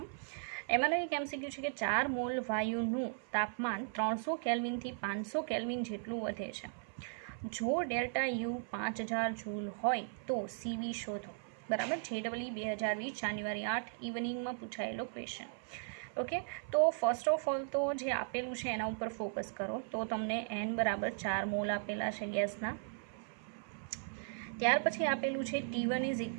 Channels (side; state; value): left; silent; 53 dB below the other